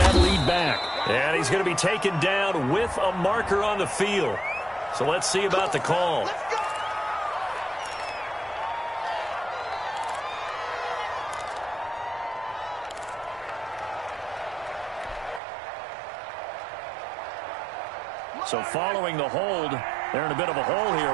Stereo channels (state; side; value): drops out; left; at 15.4 s